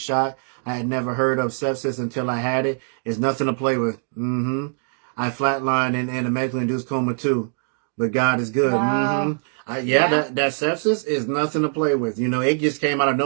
I had never heard of sepsis until I had it. It's nothing to play with. I flatlined in a medically induced coma too, but God is good. Wow. That sepsis is nothing to play with. You know, it just came out of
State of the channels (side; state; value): left; silent; 64 dB below the other